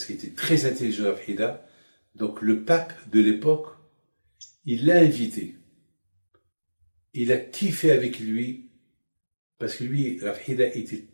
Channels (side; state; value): both; inverted; correlation -1.00